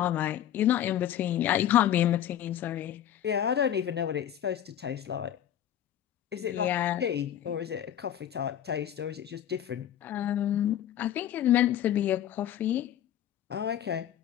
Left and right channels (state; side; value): quieter; right; 10.8 dB